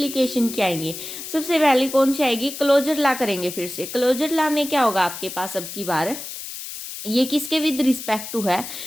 की आएंगी। सबसे पहले कौन सी आएगी? क्लोजर लॉ करेंगे फिर से। क्लोजर लॉ में क्या होगा आपके पास अब की बार? ये किसके विद रिस्पेक्ट टू है?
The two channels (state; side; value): noise; left; hiss, 9 dB below the sound